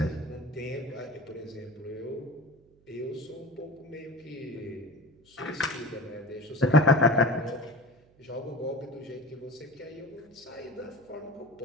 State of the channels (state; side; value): noise; right; hum, 29 dB below the sound